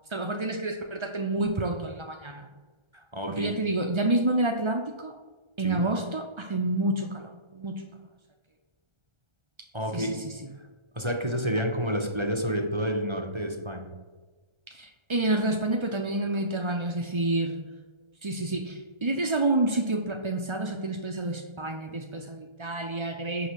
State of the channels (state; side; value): late; left; 1.3 ms